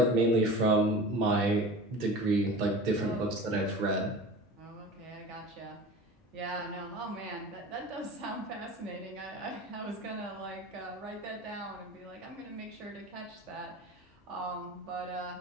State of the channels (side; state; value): both; normal; correlation 0.36